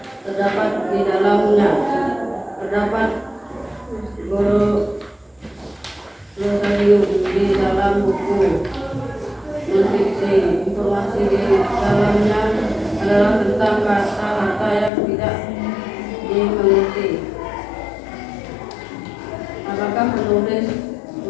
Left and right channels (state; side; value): drops out; right; at 14.9 s